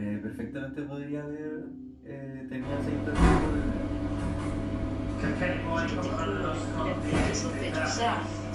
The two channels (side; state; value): both; identical; correlation 1.00